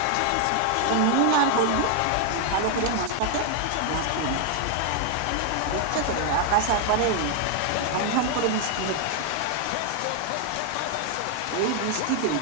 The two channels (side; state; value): both; different; correlation 0.00